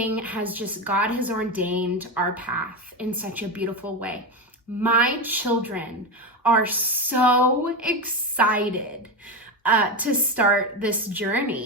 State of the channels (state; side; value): normal; both; correlation 0.16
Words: God has ordained our path in such a beautiful way. My children are so excited to start this